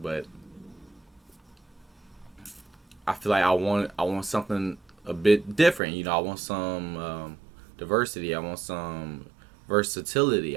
but I feel like I want something a bit different. You know, I want some diversity. I want some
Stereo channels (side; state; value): left; drops out; at 5.8 s